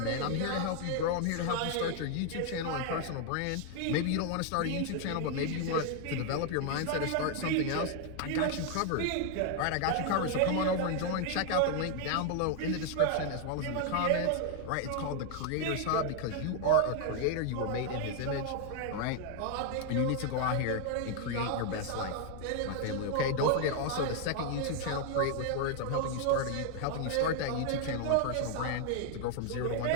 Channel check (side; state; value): both; different; correlation 0.00